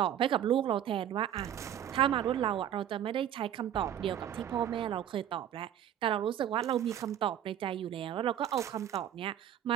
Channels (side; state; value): left; quieter; 10.5 dB